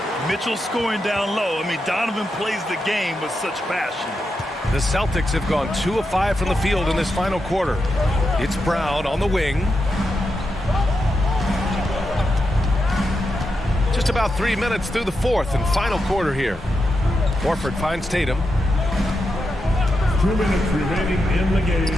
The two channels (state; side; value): normal; both; correlation 0.86